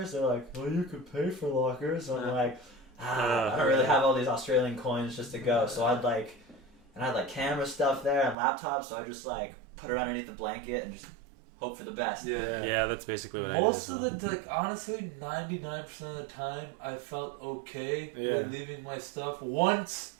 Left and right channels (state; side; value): drops out; left; at 8.3 s